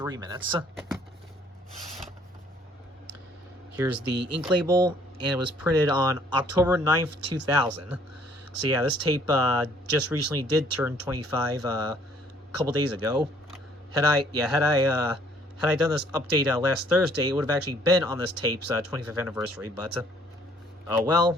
minutes. Here's the ink label, and it was printed on October 9th, 2000. So yeah, this tape just recently did turn 25 a couple days ago. Had I done this update last Thursday, it would have actually been on this tape's 25th anniversary. But oh well,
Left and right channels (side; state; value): both; normal; correlation 0.60